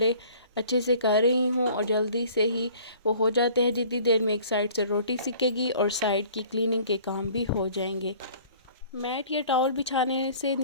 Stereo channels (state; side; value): inverted; both; correlation -0.50